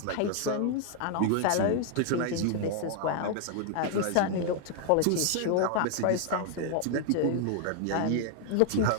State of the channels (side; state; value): both; different; correlation 0.00